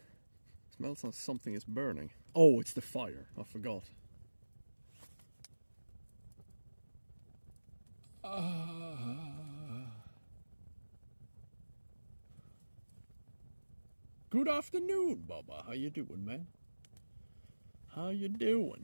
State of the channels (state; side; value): inverted; both; correlation -1.00